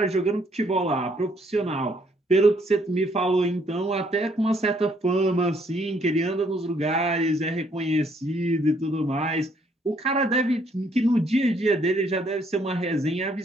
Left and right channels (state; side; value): normal; both; correlation 0.68